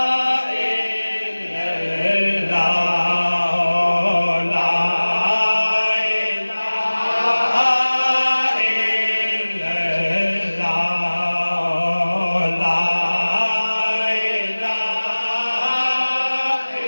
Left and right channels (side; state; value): both; inverted; correlation -1.00